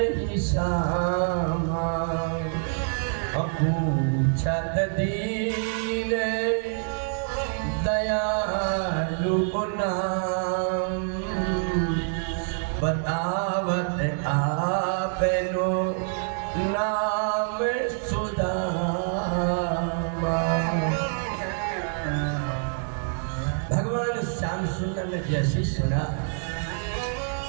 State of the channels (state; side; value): silent; left; 61 dB below the other